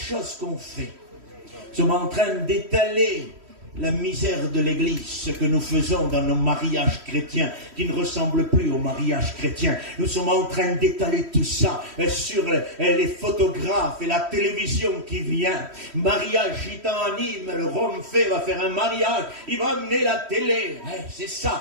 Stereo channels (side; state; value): left; late; 3.1 ms